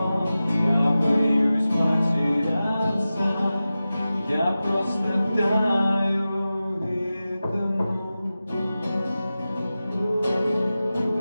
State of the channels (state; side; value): inverted; both; correlation -0.94